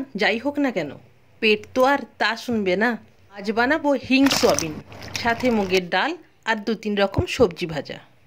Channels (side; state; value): both; identical; correlation 1.00